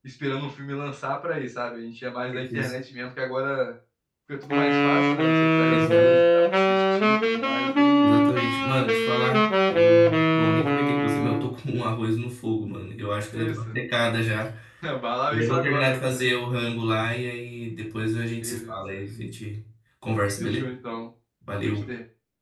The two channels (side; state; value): both; identical; correlation 1.00